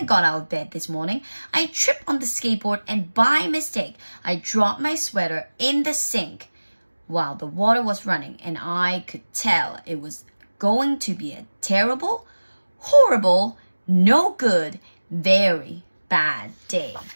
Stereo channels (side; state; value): both; inverted; correlation -1.00